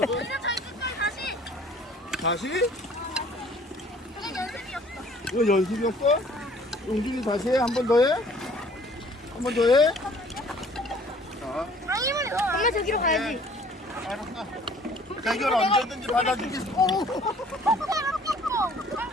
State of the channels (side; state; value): both; normal; correlation 0.54